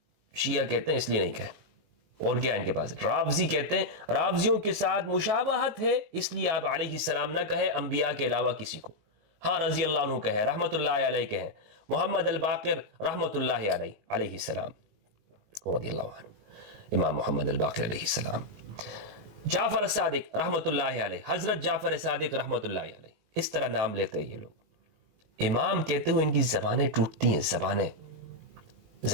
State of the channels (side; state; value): left; late; 19 ms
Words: شیعہ کہتے ہیں اس لیے نہیں کہیں. اور کیا ان کے پاس؟ رافضی کہتے ہیں رافضیوں کے ساتھ مشابہت ہے، اس لیے آپ علیہ السلام نہ کہیں انبیاء کے علاوہ کسی کو. ہاں رضی اللہ عنہ کہیں، رحمت اللہ علیہ کہیں، محمد الباقر رحمت اللہ علیہ علیہ السلام رضی اللہ عنہ، امام محمد الباقر علیہ السلام، جعفر الصادق رحمت اللہ علیہ، حضرت جعفر صادق رحمت اللہ علیہ، اس طرح نام لیتے ہیں یہ لوگ۔ امام کہتے ہوئے ان کی زبانیں ٹوٹتی ہیں، زبانیں۔